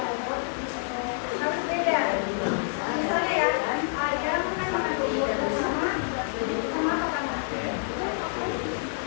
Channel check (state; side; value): silent; right; digital silence